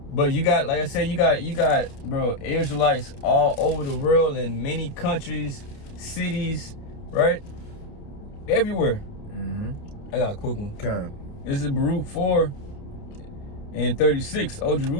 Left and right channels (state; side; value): late; right; 28 ms